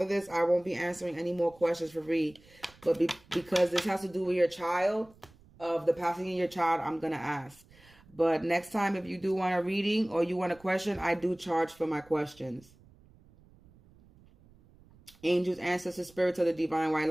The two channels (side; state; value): right; noise; rumble, 27 dB below the sound